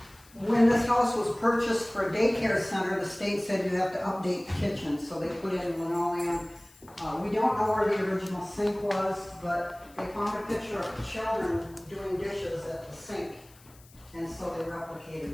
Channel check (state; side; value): noise; left; hiss, 26 dB below the sound